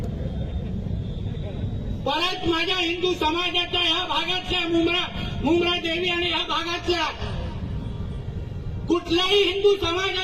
परत माझ्या हिंदू समाजाच्या ह्या भागातल्या मुंब्रा देवी आणि ह्या भागातल्या कुठल्याही हिंदू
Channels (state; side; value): identical; both; correlation 1.00